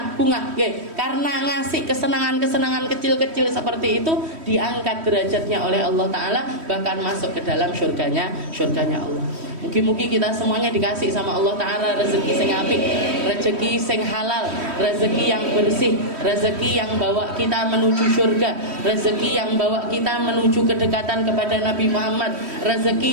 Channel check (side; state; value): left; late; 3.1 ms